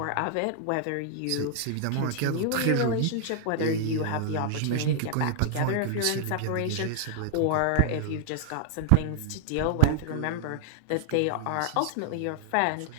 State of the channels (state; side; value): different; both; correlation -0.01